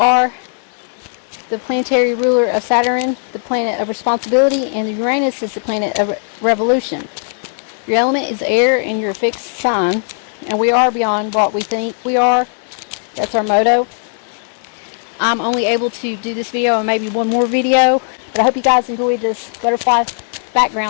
the planetary ruler of Saturn, the planet of responsibility, and Uranus is the planet of revolution. Your element is air, and you're a fixed sign, and we are beyond what we think we are. That's our motto. I'm only able to do this video and maybe one more video, but I hope you guys enjoyed this butterfly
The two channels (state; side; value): silent; right; digital silence